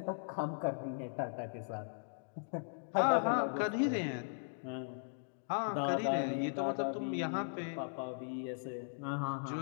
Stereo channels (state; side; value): silent; right; digital silence